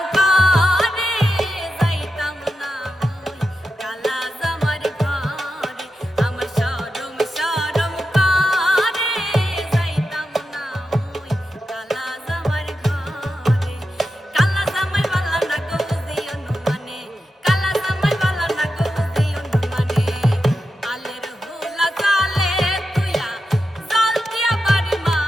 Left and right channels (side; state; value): both; normal; correlation 0.90